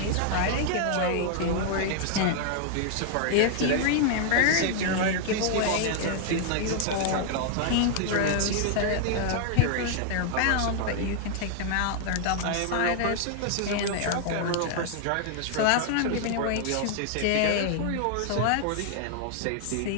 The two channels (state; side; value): different; both; correlation 0.00